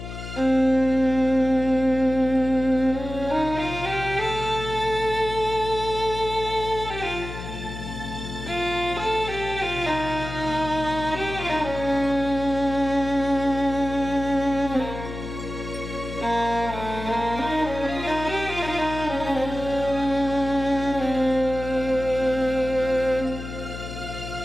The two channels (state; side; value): noise; left; hum, 9 dB below the sound